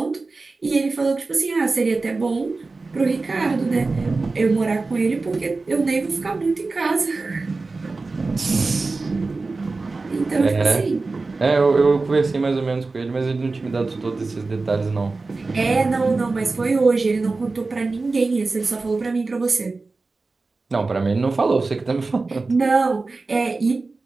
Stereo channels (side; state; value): left; quieter; 3.7 dB